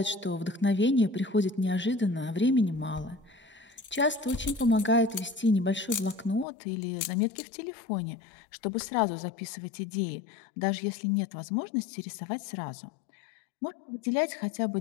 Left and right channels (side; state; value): right; drops out; at 6.5 s